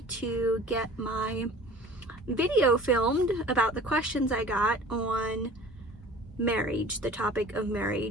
to get my video filmed about the questions I got on marriage, the topic of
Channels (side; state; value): both; normal; correlation 0.45